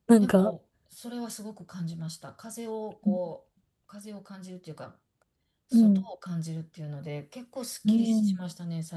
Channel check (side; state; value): both; identical; correlation 1.00